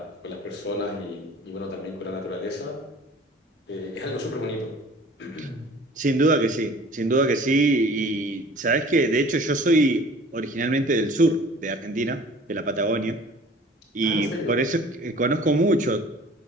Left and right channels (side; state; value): both; normal; correlation 0.47